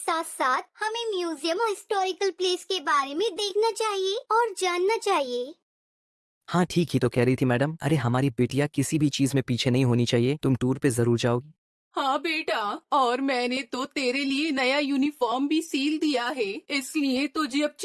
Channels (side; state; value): both; identical; correlation 1.00